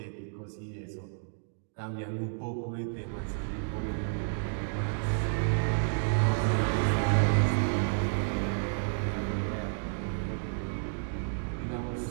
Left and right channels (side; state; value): left; silent; digital silence